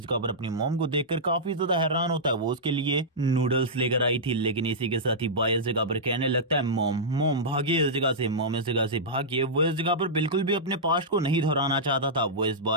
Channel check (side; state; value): both; normal; correlation -0.12